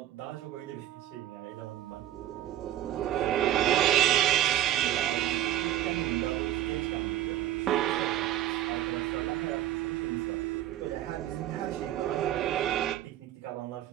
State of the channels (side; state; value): left; quieter; 12.8 dB